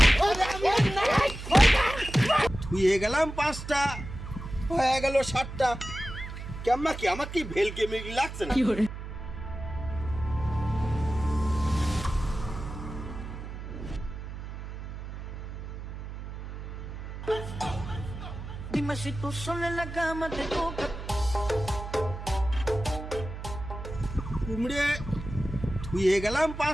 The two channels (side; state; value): right; noise; hum, 9 dB below the sound